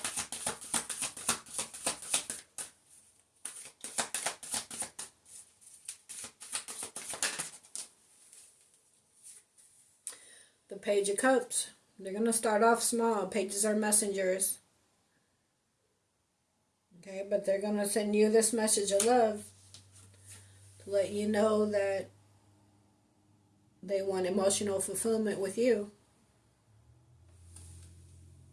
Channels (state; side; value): identical; both; correlation 1.00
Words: The Page of Cups. They're going to start off small. Pages are messengers. Okay, but they're going to send you this message of love to let you know that they want emotional fulfillment with you.